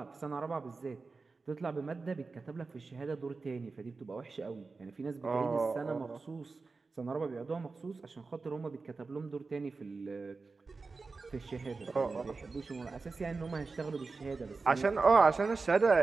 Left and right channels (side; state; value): left; quieter; 4.1 dB